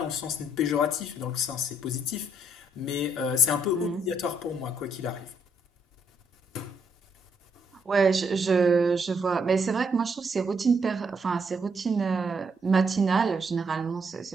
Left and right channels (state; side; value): normal; both; correlation 0.74